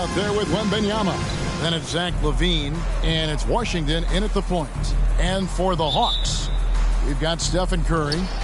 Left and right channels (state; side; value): identical; both; correlation 1.00